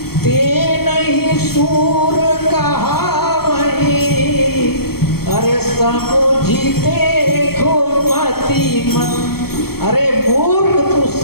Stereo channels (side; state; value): right; late; 0.95 ms